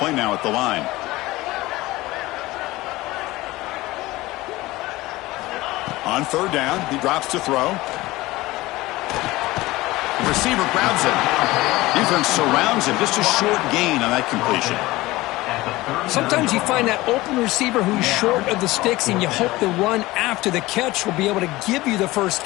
now at the line. On third down, he drops to throw. The receiver grabs it. Defense surrounds him. Just a short gain on that completion. Sometimes you find that open receiver who's short of the sticks, and you hope the run after the catch will be able to give you the first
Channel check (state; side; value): quieter; right; 19.2 dB